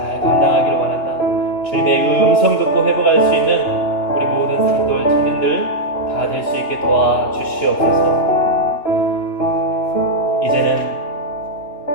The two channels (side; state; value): right; late; 2.9 ms